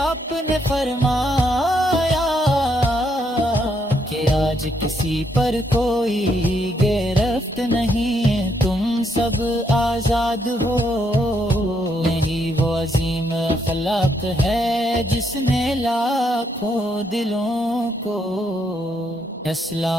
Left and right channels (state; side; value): normal; both; correlation 0.75